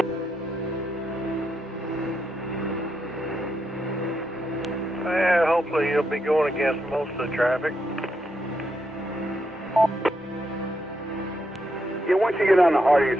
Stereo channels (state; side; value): normal; both; correlation 0.81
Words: Yeah, hopefully you'll be going against most of the traffic. Yeah, once you get on the Hardy,